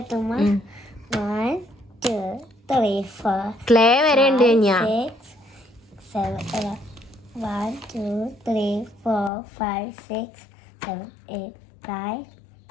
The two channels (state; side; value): drops out; right; at 9.3 s